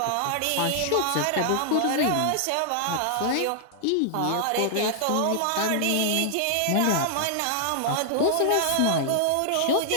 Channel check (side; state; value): both; different; correlation 0.00